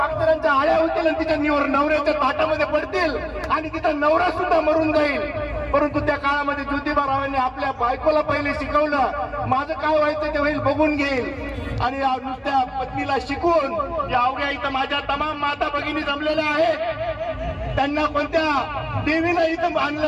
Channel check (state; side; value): identical; both; correlation 1.00